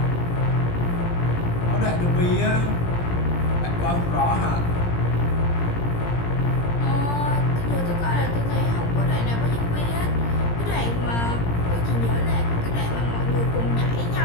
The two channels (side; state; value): right; late; 17 ms